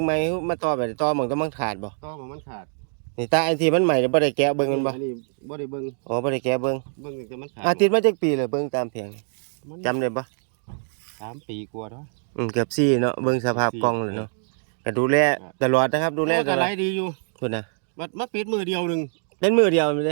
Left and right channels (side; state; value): left; silent; digital silence